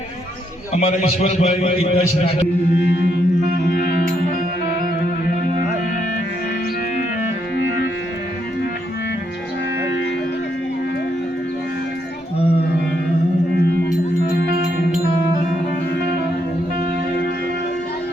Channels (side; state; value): both; normal; correlation 0.76